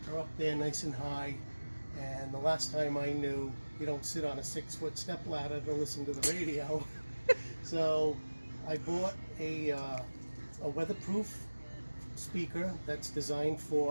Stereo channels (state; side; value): inverted; both; correlation -1.00